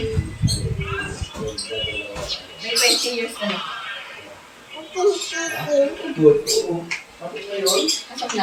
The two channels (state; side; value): identical; both; correlation 1.00